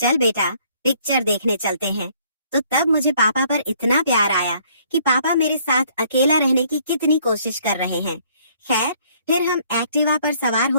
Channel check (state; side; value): inverted; both; correlation -0.63